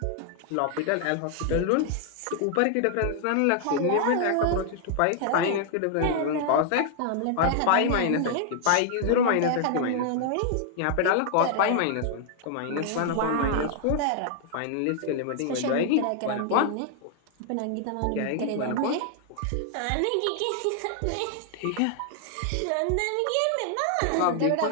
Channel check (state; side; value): different; both; correlation 0.00